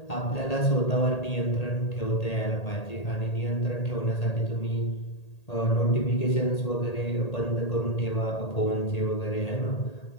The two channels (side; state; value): right; late; 1.8 ms